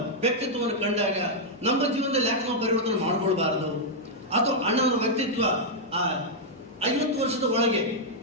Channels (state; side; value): normal; both; correlation -0.05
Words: ವ್ಯಕ್ತಿತ್ವವನ್ನು ಕಂಡಾಗ ನಮ್ಮ ಜೀವನದಲ್ಲಿ ಯಾಕೆ ನಾವು ಪರಿವರ್ತನೆ ಮಾಡಿಕೊಳ್ಬಾರದು? ಅಥವಾ ಅಣ್ಣನವರ ವ್ಯಕ್ತಿತ್ವ ಆ 50 ವರ್ಷದ ಒಳಗೆ